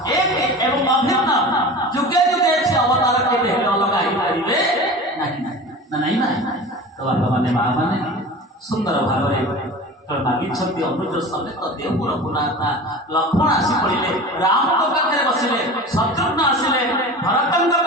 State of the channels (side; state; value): both; normal; correlation 0.35